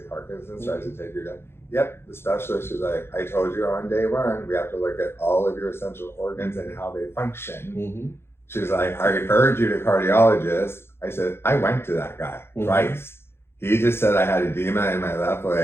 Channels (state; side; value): late; right; 0.12 ms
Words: Parkinson's tries to take you down. Yep, the specialist was like, I told you on day one, we have to look at all of your essential organs and how they function. She's like, I referred you to cardiologist. I said, I went to that guy twice. He just said I had edema in my left